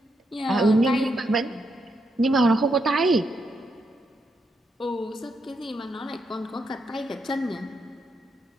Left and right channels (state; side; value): normal; both; correlation 0.81